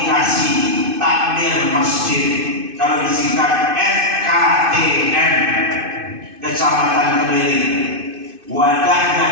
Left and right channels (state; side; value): late; left; 2.6 ms